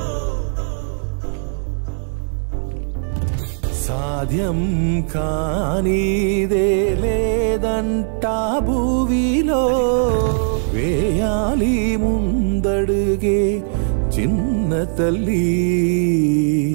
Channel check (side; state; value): left; silent; digital silence